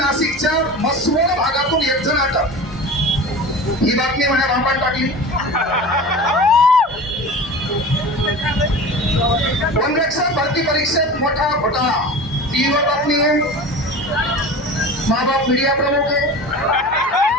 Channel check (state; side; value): normal; both; correlation 0.34